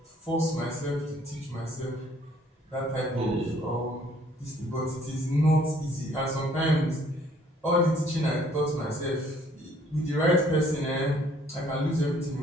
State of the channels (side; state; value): both; normal; correlation 0.61